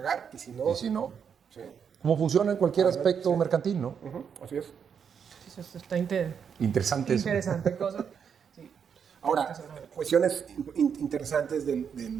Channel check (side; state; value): left; quieter; 7.2 dB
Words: y si no... ¿Y si no? Sí. Como funciona en cualquier aspecto mercantil, ¿no? Así es. Eso está Interesante eso. interesante cosa. Sí. Ahora, cuestiones interesantes